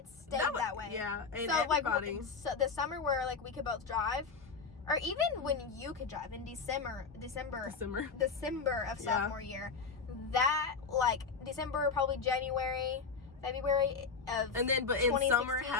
stayed that way. Yeah, and so, everybody. Like, so the summer where, like, we could both drive, or even when you could drive in December of sophomore year, that, like, December, probably January, February of and then, but in summer,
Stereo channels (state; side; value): quieter; right; 5.1 dB